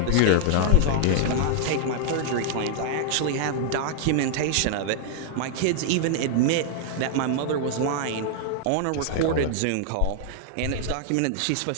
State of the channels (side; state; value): both; different; correlation 0.00